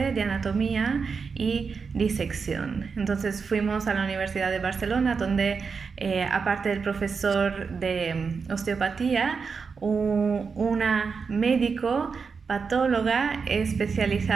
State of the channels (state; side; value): quieter; left; 5.3 dB